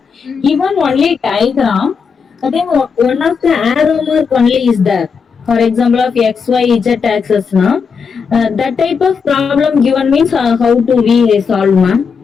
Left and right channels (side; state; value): right; quieter; 5.8 dB